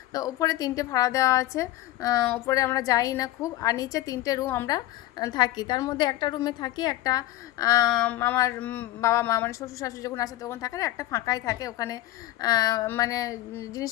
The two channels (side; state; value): right; quieter; 15.9 dB